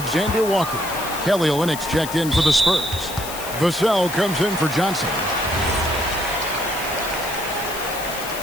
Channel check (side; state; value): left; noise; hiss, 10 dB below the sound